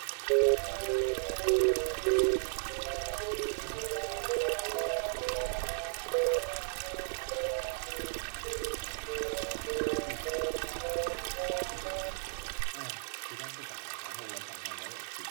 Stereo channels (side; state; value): left; silent; digital silence